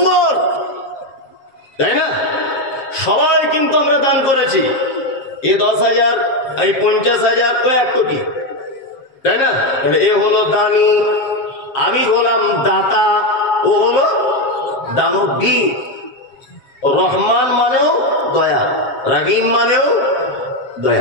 তাই না? সবাই কিন্তু আমরা দান করেছি। এ 10,000, এই 50,000, ও 1 কোটি, তাই না? এ হলো দানি, আমি হলাম দাতা, ও হলো দানবীর। রহমান মানেও দয়া, রহিম মানেও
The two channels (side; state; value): right; late; 7.5 ms